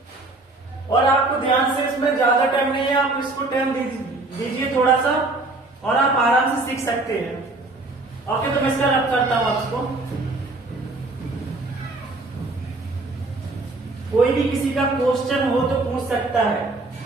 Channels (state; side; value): quieter; left; 3.1 dB